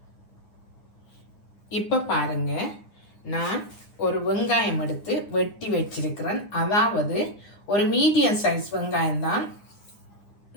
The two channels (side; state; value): right; late; 9.7 ms